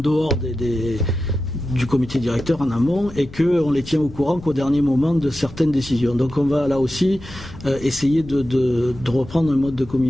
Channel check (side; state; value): left; noise; rumble, 17 dB below the sound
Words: du comité directeur en amont et qu'on les tient au courant qu'au dernier moment de certaines décisions. Donc on va là aussi essayer de reprendre un mode de